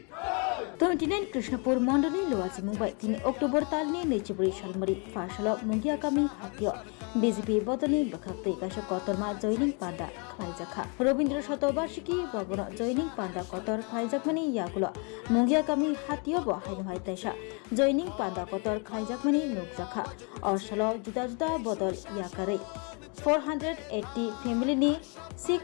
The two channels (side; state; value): right; quieter; 34.9 dB